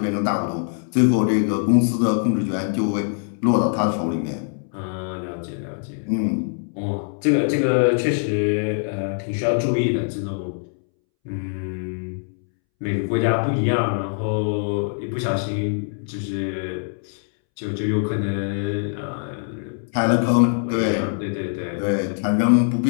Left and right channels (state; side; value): silent; right; 64 dB below the other